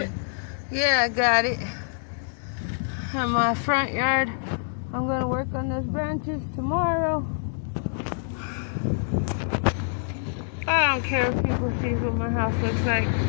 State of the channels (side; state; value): right; silent; digital silence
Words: it? Yeah, I got it. In my front yard. I'm going to work on those branches tomorrow. I don't care if people see what my house looks like.